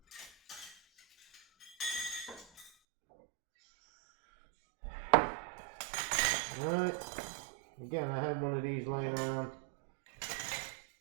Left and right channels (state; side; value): drops out; left; at 2.7 s